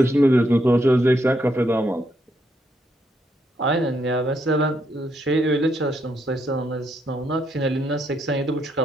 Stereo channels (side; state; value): both; normal; correlation 0.77